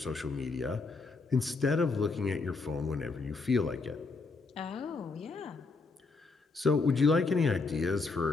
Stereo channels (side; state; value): right; quieter; 4.1 dB